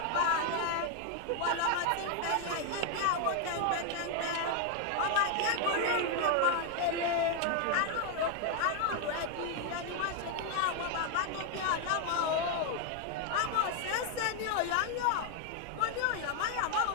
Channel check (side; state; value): both; different; correlation 0.00